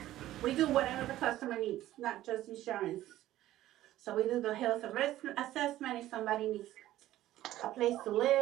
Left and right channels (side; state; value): left; quieter; 14.4 dB